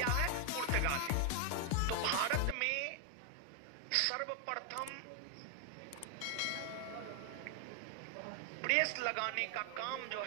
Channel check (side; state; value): both; different; correlation 0.01